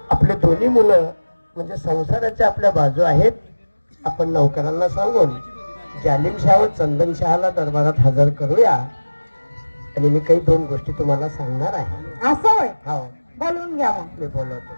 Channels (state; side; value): inverted; both; correlation -1.00